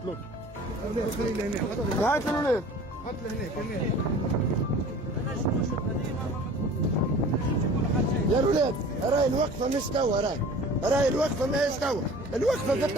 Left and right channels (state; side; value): normal; both; correlation 0.44